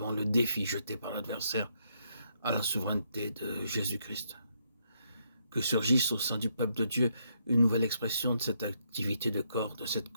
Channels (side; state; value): both; inverted; correlation -0.76